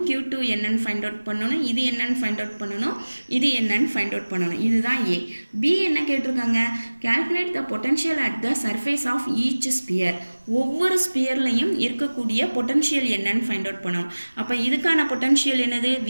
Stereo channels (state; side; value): inverted; both; correlation -1.00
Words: Q2 என்னன்னு ஃபைண்ட் அவுட் பண்ணணும், இது என்னன்னு ஃபைண்ட் அவுட் பண்ணணும், இது என்னன்னு ஃபைண்ட் அவுட் பண்ணணும். இதுதான் ஏ. பி என்ன கேட்டிருக்காங்க, calculate the potential at the surface of each sphere. ஒவ்வொரு ஸ்பியர்லையும் இருக்கக்கூடிய பொட்டன்ஷியல் என்னன்னு ஃபைண்ட் அவுட் பண்ணணும். அப்போ இதுக்கான பொட்டன்ஷியல் என்னது,